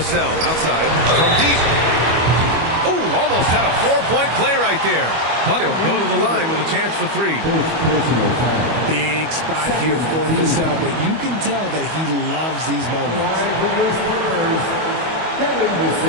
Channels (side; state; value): left; late; 25 ms